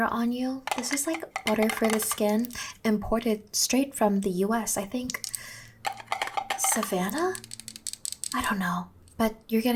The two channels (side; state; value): both; identical; correlation 1.00